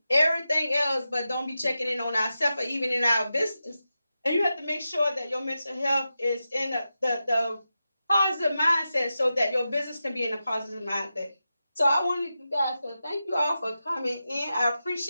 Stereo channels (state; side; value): inverted; both; correlation -0.91